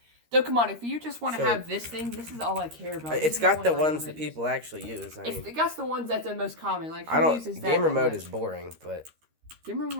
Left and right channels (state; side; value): late; left; 13 ms